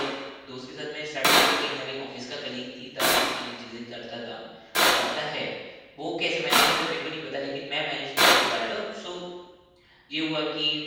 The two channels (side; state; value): both; identical; correlation 1.00